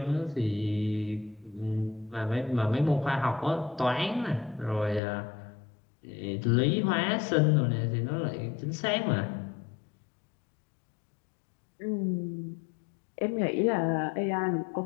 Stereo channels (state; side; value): drops out; right; at 5.0 s